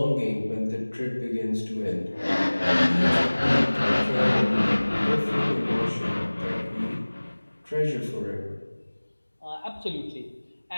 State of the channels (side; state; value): both; inverted; correlation -1.00